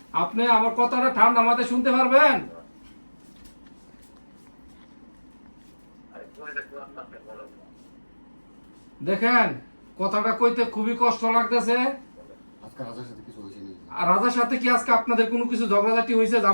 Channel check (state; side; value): inverted; both; correlation -1.00